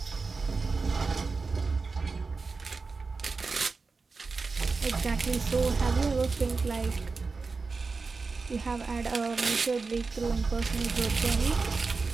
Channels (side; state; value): left; quieter; 4.3 dB